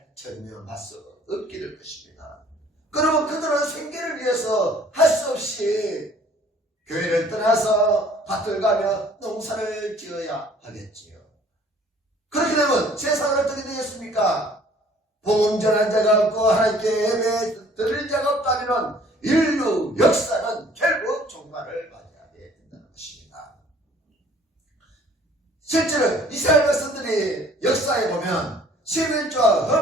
전념할 수 없게 될 것입니다. 그러면 그들은 생계를 위해서 할 수 없이 교회를 떠나서 밭을 가며 농사를 지어야 하겠지요. 그렇게 되면 세상은 어떻게 되겠습니까? 복음 전한 자가 없고 하나님께 예배 드릴 자가 없다면 인류 역사는 결국 종말을 맞이하게 된다는 것입니다. 실제로 이스라엘 백성들이 역사에 보면 11조와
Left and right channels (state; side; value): normal; both; correlation 0.55